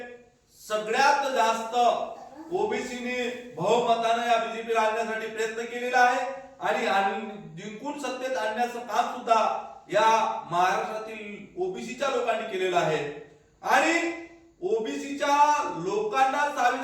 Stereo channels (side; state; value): both; identical; correlation 1.00